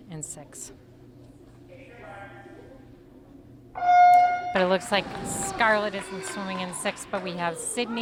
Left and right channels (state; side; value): identical; both; correlation 1.00